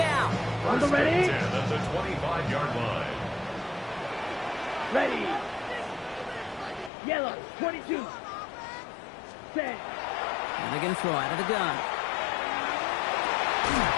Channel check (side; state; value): right; drops out; at 6.9 s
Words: On the ready? 10 at the 25-yard line. Ready. Yellow, 22. Set. And they're going to throw out of the gun.